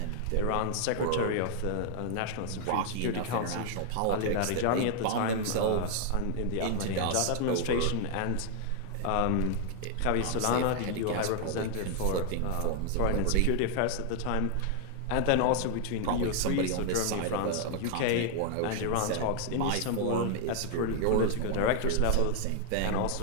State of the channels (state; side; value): different; both; correlation 0.00